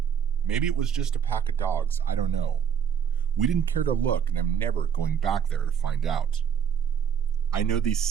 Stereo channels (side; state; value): left; quieter; 7.7 dB